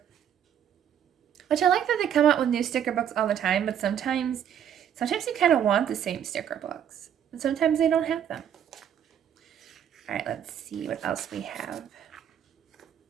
Which I like that they come out with new sticker books all the time, but sometimes you kind of want the same sticker books. And sometimes they don't have them. All right, let's see what else we have.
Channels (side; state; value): left; quieter; 9.3 dB